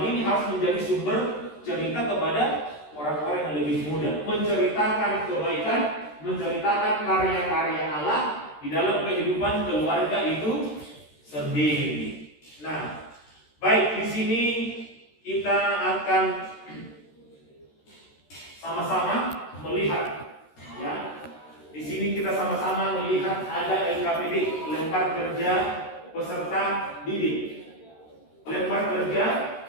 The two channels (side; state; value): right; late; 13 ms